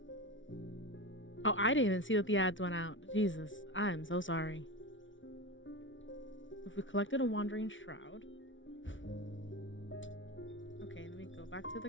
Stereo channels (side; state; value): right; late; 0.56 ms